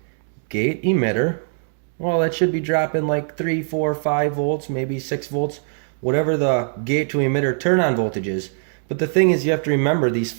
gate, emitter, well, that should be dropping like 3, 4, 5 volts, maybe 6 volts, whatever the gate to emitter turn on voltage is. But the thing is, you have to remember these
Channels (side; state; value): left; silent; digital silence